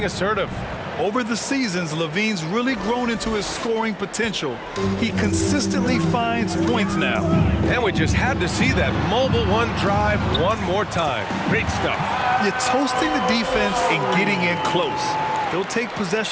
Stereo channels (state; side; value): identical; both; correlation 1.00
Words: assertive. Over the seasons, Levine's really grown into his scoring potential. He consistently finds points now. And we just had to see that mobile one drive one more time. Great stuff. You're toasting the defense and getting in close. They'll take